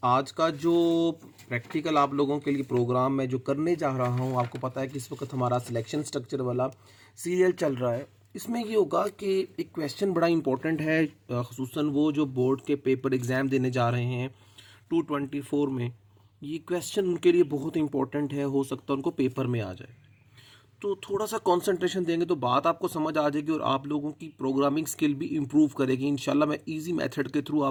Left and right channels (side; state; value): both; identical; correlation 1.00